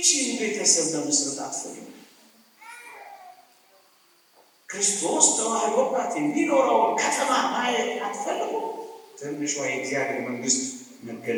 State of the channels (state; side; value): identical; both; correlation 1.00